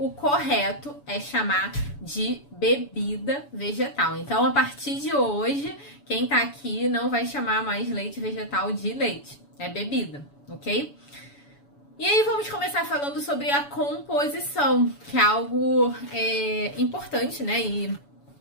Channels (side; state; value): right; late; 7.0 ms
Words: correto é chamar de bebida vegetal. Então, a partir de hoje, quem tá aqui não vai chamar mais leite vegetal de leite, é bebida, ok? E aí, vamos começar falando sobre a composição, que é algo importante, né? E